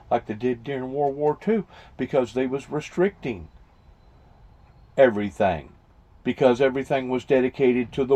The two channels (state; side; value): identical; both; correlation 1.00